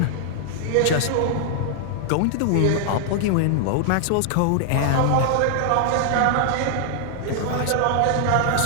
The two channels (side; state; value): both; different; correlation 0.00